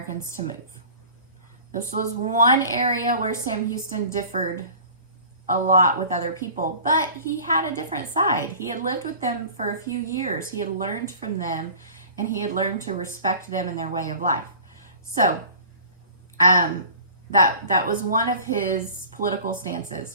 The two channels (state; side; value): inverted; both; correlation -0.43